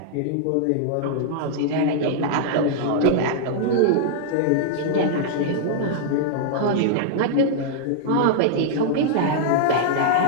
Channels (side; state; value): both; different; correlation -0.01